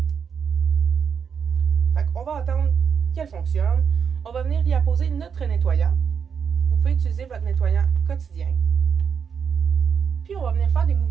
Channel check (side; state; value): left; quieter; 6.8 dB